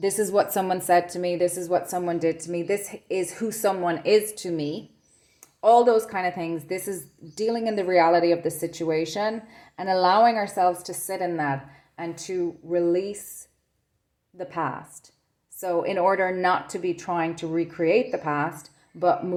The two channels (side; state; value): both; identical; correlation 1.00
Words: is what someone said to me. This is what someone did to me. This is who someone is to me. All those kind of things. This is dealing in the reality of the situation and allowing ourselves to sit in that and to release the past. So in order not to be trying to recreate the past, but